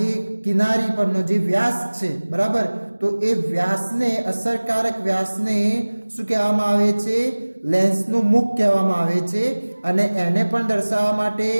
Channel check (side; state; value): both; inverted; correlation -1.00